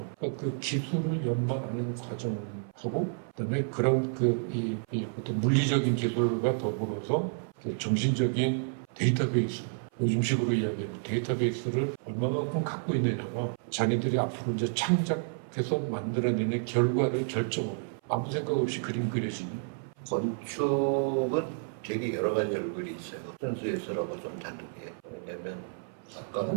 그러니까 그 기술을 연마하는 과정을 하고 그다음에 그런 이 어떤 물리적인 기술과 더불어서 정신적인 데이터베이스 요즘식으로 이야기하는 데이터베이스를 얼마만큼 갖고 있느냐가 자기들이 앞으로 이제 창작해서 만들어내는 결과를 결정을 해요. 아무 생각 없이 그림 그려지니 건축은 되게 여러 가지 얼굴이 있어요. 순수예술하고 좀 다르게. 왜냐면 아까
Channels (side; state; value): left; silent; 57 dB below the other